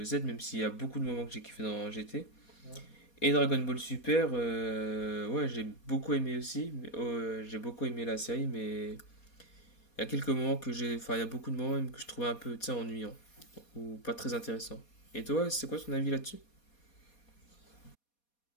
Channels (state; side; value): late; right; 4.2 ms